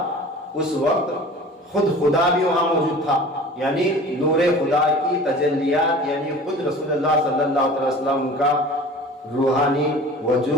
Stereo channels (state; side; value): normal; both; correlation 0.41